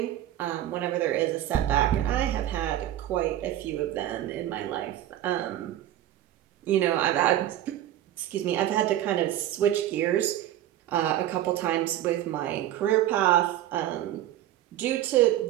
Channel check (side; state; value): left; quieter; 12.8 dB